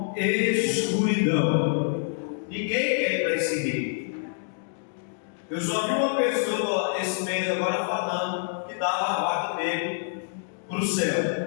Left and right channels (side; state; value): right; silent; digital silence